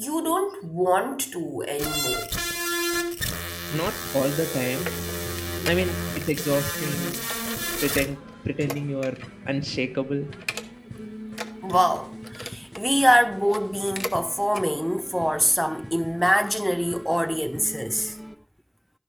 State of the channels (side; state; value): both; identical; correlation 1.00